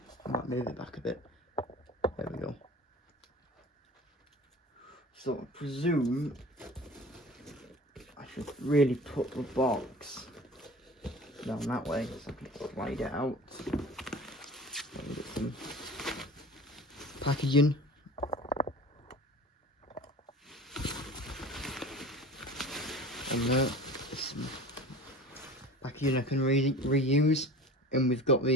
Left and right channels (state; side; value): normal; both; correlation 0.39